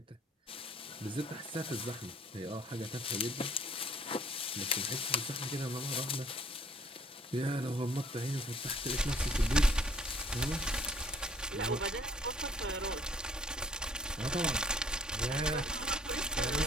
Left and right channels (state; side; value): normal; both; correlation 0.58